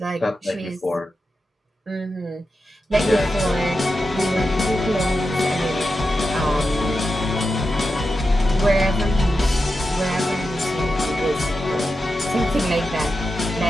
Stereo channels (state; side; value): normal; both; correlation 0.90